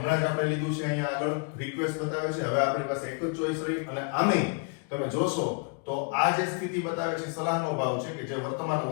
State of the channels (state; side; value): quieter; right; 36.3 dB